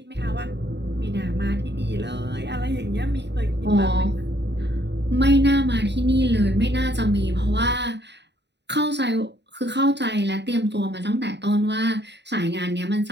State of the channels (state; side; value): late; left; 0.50 ms